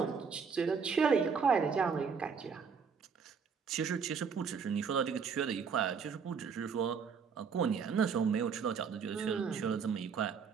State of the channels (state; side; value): quieter; left; 6.0 dB